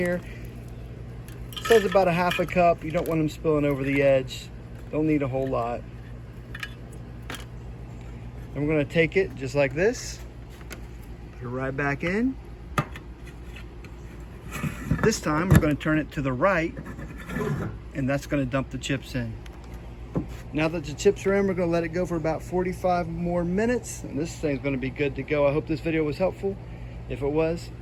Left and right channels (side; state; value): both; identical; correlation 1.00